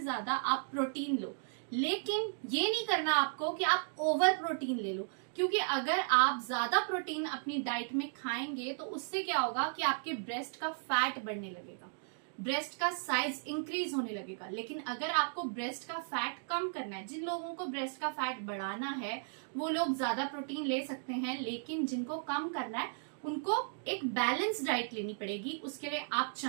ज्यादा आप प्रोटीन लो, लेकिन ये नहीं करना आपको कि आप ओवर प्रोटीन ले लो, क्योंकि अगर आप ज्यादा प्रोटीन अपनी डाइट में खाएंगे तो उससे क्या होगा कि आपके ब्रेस्ट का फैट बढ़ने लगेगा, ब्रेस्ट का साइज इंक्रीज होने लगेगा। लेकिन अगर आपको ब्रेस्ट का फैट कम करना है, जिन लोगों को ब्रेस्ट का फैट बढ़ाना है वो लोग ज्यादा प्रोटीन ले सकते हैं, लेकिन जिनको कम करना है उनको एक बैलेंस डाइट लेनी पड़ेगी। उसके लिए आप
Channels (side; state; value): left; silent; digital silence